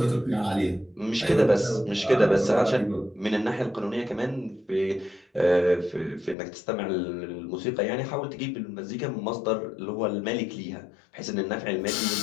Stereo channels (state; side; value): drops out; right; at 6.4 s